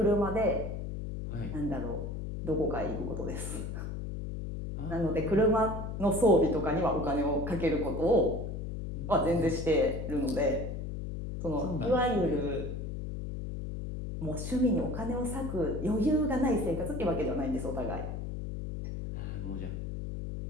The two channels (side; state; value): left; noise; hum, 5 dB below the sound